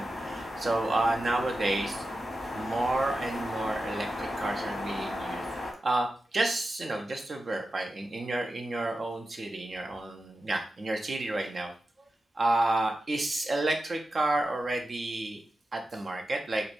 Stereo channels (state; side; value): normal; both; correlation 0.91